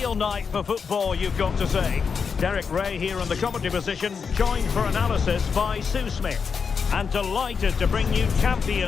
night for football, you've got to say. Derek Ray here in the commentary position, joined for analysis by Sue Smith. And delighted to bring you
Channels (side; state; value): right; quieter; 5.9 dB